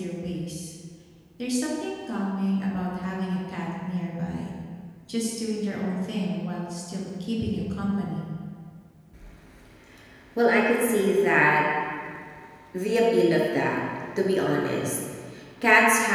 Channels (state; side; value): identical; both; correlation 1.00